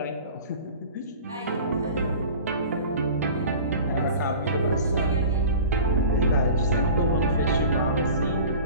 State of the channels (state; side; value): inverted; both; correlation -0.40